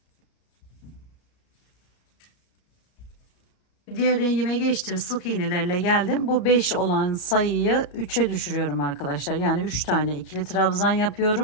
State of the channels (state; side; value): late; right; 33 ms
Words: Diğer rengime geçtim. Sık iğnelerle geldim. Bu 5 olan sayıyı 3'e düşürüyorum arkadaşlar. Yani 3 tane ikili trabzan